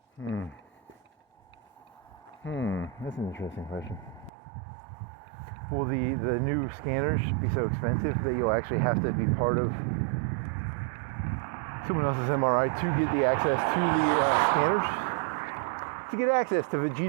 That's an interesting question. Will the new scanners be so expensive that you'll actually have to be part of someone else's MRI to get the access to the scanners? To get access to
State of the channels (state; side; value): drops out; left; at 4.3 s